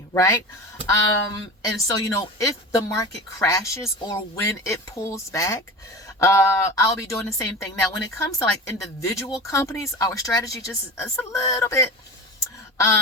right? And so, if the market crashes or when it pulls back, I'll be doing the same thing. Now, when it comes to like individual companies, our strategy just is a little bit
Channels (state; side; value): normal; both; correlation 0.31